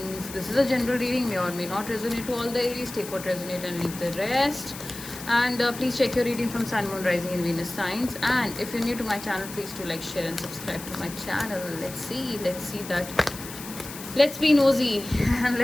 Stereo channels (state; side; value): noise; left; hiss, 12 dB below the sound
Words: This is a general reading, may or may not resonate to all the Aries. Take what resonate and leave the rest. And please check your reading from Sun, Moon, Rising, and Venus signs. And if you're new to my channel, please do like, share, and subscribe to my channel. Let's see that. Let's be nosy and